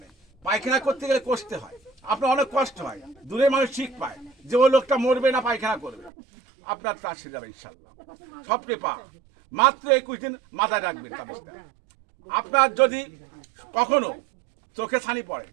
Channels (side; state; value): left; drops out; at 6.1 s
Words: পায়খানা করতে গেলে কষতে হয়, আপনার অনেক কষ্ট হয়, দূরে মানুষ ঠিক পায় যে ওই লোকটা মরবে না পায়খানা করবে, আপনার তা সেরে যাবে ইনশাল্লাহ। স্বপ্নে পা মাত্র 21 দিন মাথায় রাখবেন তাবিজটা। আপনার যদি কখনো চোখে ছানি পড়ে,